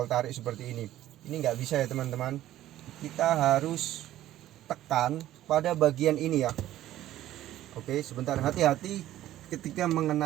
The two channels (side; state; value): left; quieter; 13.6 dB